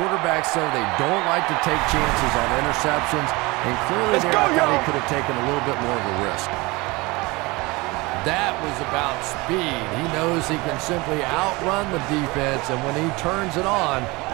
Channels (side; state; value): left; quieter; 23.8 dB